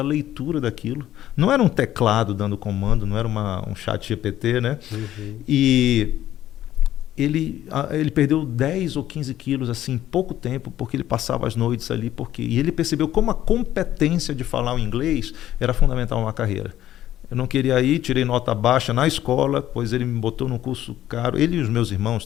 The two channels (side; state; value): right; quieter; 12.7 dB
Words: a leitura daquilo. Não era um teclado dando comando, não era um chat GPT, né? E ele perdeu 10 ou 15 quilos assim, em pouco tempo, porque ele passava as noites ali. E ele percebeu como a competência de falar o inglês era fundamental na carreira. Eu não queria ir, tirei nota baixa na escola, pois ele me botou num curso caro, ele e os meus irmãos